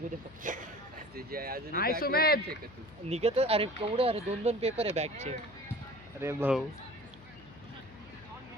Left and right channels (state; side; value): noise; left; hum, 21 dB below the sound